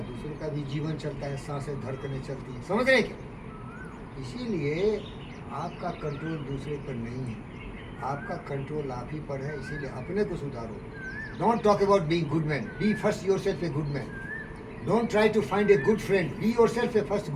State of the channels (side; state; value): both; identical; correlation 1.00